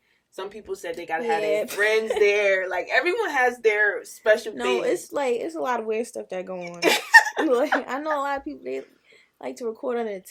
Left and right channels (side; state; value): both; identical; correlation 1.00